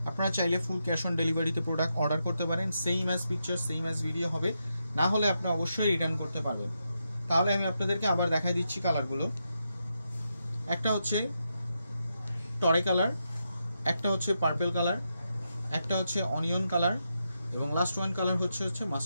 আপনারা চাইলে ফুল ক্যাশ অন ডেলিভারিতে প্রোডাক্ট অর্ডার করতে পারেন। Same as picture, same as video হবে, না হলে আপনি অবশ্যই রিটার্ন করতে পারবেন। তাহলে আমি আপনাদেরকে আবার দেখাই দিচ্ছি কালারগুলো। একটা হচ্ছে টরে কালার, একটা হচ্ছে পার্পল কালার, একটা হচ্ছে অনিয়ন কালার, এবং লাস্ট ওয়ান কালার হচ্ছে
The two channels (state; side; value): inverted; both; correlation -0.85